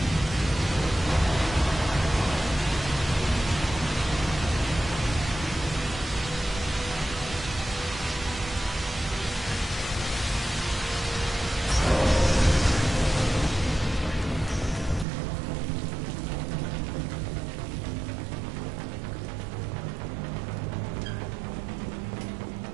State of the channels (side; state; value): left; drops out; at 15.1 s